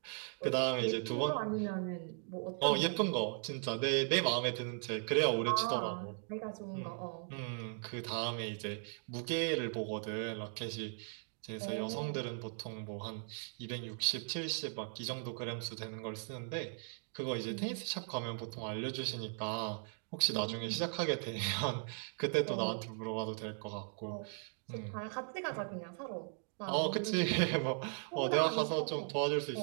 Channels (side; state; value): left; silent; 52 dB below the other